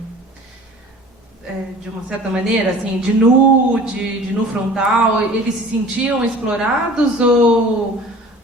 de uma certa maneira, assim, de nu frontal, eles se sentiam explorados ou...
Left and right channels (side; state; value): both; normal; correlation 0.45